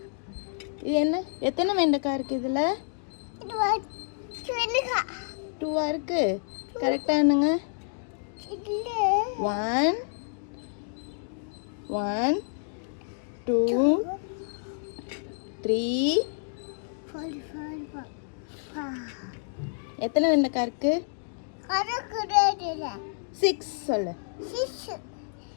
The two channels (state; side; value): silent; right; digital silence